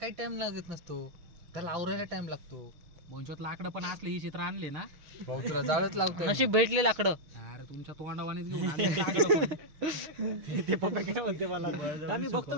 टाइम लागत नसतो, त्याला आवरायला टाइम लागतो. बोंचोत लाकडं पण असले ही चित्र आणले ना भाऊ तुला जाळच लागतो. नशीब भेटले लाकडं. अरे तुमच्या तोंडावानेच घेऊन आले लाकडं. ते पप्पा काय म्हणते मला, आम्ही बघतो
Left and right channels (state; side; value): late; left; 6.4 ms